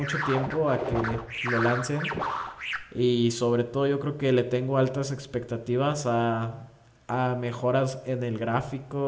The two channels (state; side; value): identical; both; correlation 1.00